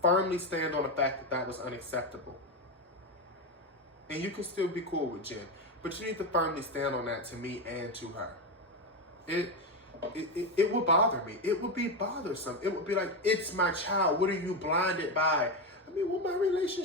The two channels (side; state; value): both; normal; correlation 0.12